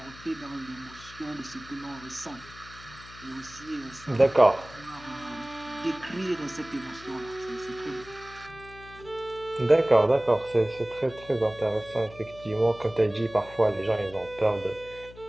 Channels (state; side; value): noise; left; hum, 19 dB below the sound